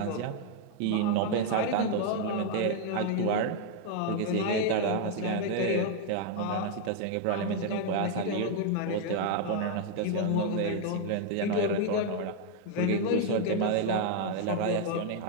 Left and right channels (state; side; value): different; both; correlation 0.00